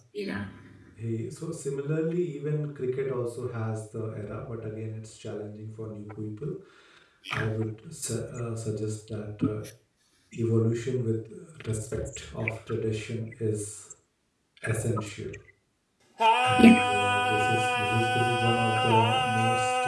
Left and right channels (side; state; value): both; identical; correlation 1.00